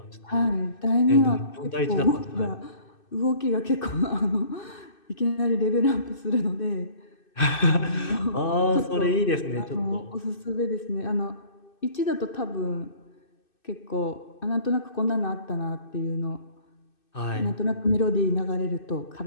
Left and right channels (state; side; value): late; right; 2.6 ms